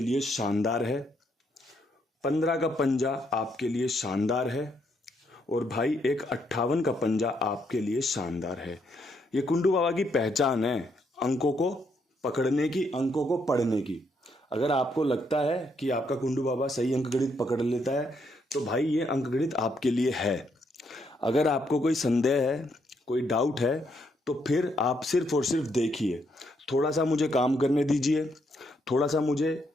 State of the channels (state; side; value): normal; both; correlation 0.75